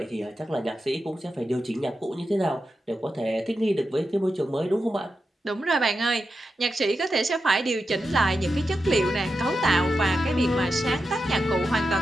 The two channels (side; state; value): both; normal; correlation 0.89